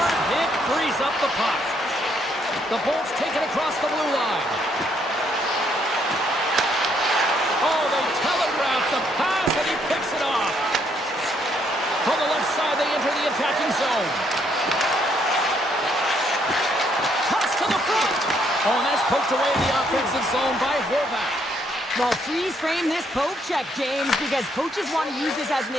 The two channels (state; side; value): normal; both; correlation 0.71